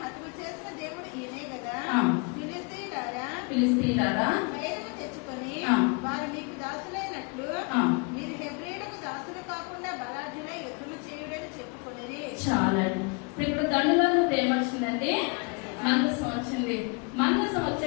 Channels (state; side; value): quieter; right; 32.6 dB